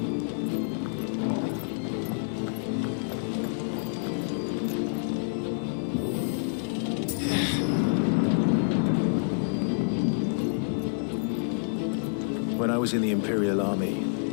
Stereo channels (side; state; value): right; silent; digital silence